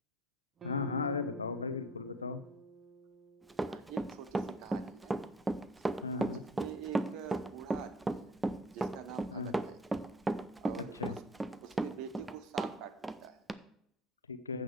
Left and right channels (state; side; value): normal; both; correlation 0.49